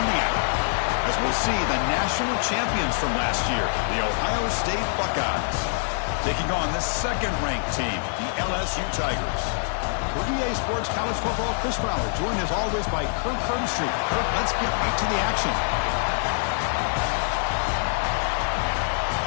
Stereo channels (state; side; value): silent; right; digital silence